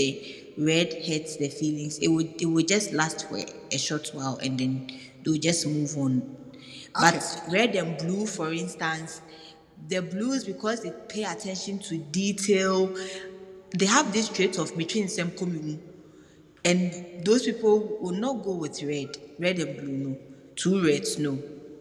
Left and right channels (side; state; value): both; identical; correlation 1.00